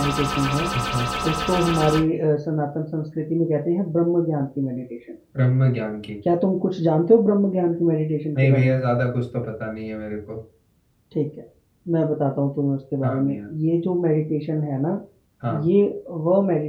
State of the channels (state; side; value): identical; both; correlation 1.00